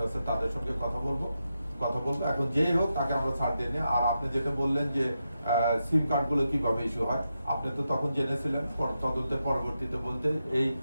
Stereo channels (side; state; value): both; inverted; correlation -0.87